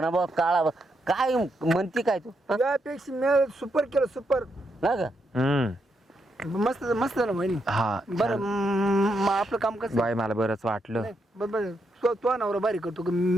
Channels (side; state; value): both; normal; correlation 0.80